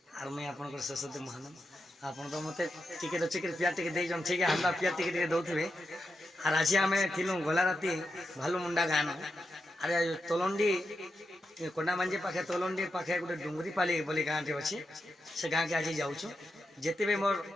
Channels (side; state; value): both; normal; correlation 0.87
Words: आर मैं आपन सरस्वती महानंद आपन तो मते टिके चिके प्यार टिके दे जन ठीक है हमरा प्यार टिके दउथबे आर आज आमे थिलु गला राती भालू मुंडा गान अरे तोलंडी कोंडा मंजे पाखे तोलंडी पाखे गोटे डुंगरी पाली बोली गाँटे अच्छे से गाँ के आज जाऊँ जिते भी मोर